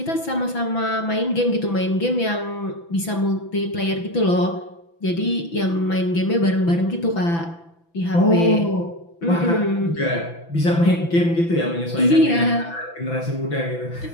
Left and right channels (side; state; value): right; late; 6.0 ms